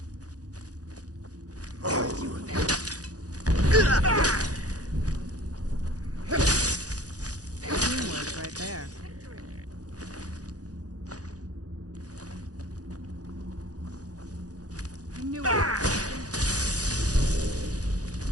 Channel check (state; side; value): late; left; 0.67 ms